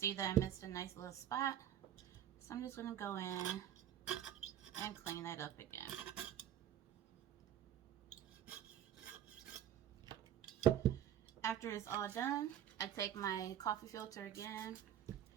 that I missed a nice little spot. So I'm just going to go in and clean that up again. After it's all done, I take my coffee filter again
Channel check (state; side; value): quieter; left; 10.3 dB